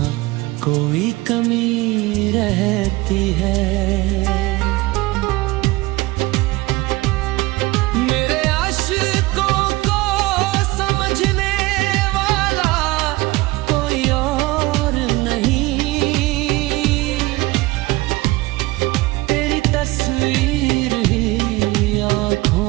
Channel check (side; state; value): left; quieter; 20.8 dB